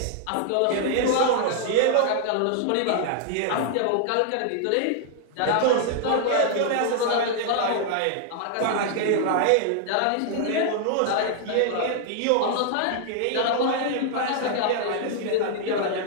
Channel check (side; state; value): both; different; correlation 0.00